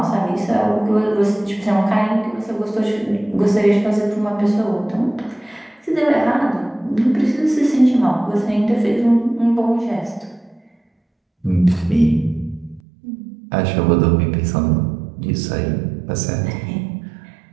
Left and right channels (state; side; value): drops out; left; at 12.8 s